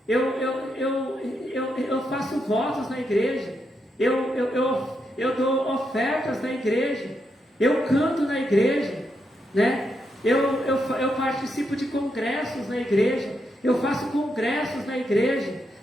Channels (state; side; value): normal; both; correlation 0.82